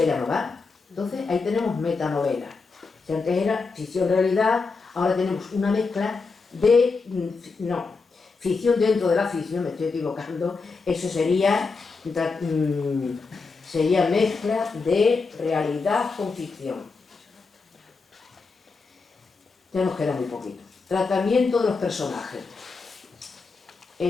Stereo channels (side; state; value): right; quieter; 4.4 dB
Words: ya no va. Entonces ahí tenemos metanovela. Si antes era ficción-realidad, ahora tenemos una mezcla de... ficción dentro de la ficción, me estoy equivocando, eso sería mezcla de realidad con ficción. Ya nos queda muy poquito. Tratamiento de los personajes.